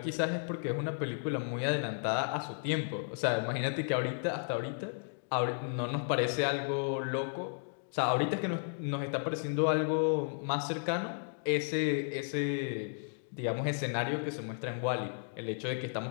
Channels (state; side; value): silent; right; digital silence